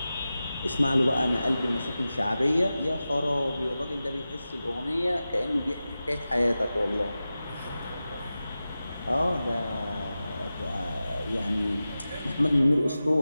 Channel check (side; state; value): both; inverted; correlation -0.94